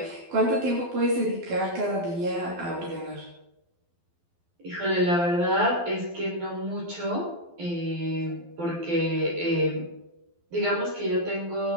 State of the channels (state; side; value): late; left; 12 ms